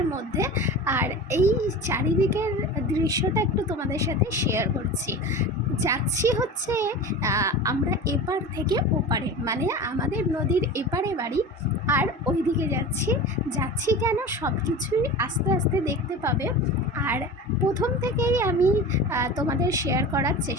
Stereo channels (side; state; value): both; normal; correlation 0.32